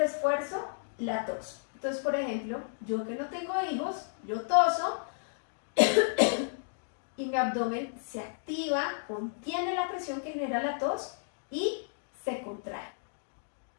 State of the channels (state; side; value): silent; right; digital silence